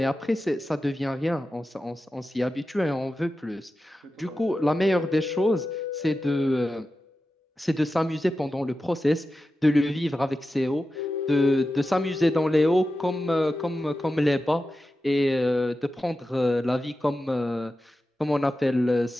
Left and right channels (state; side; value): normal; both; correlation 0.92